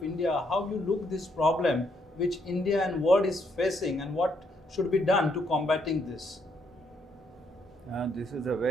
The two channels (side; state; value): both; normal; correlation 0.73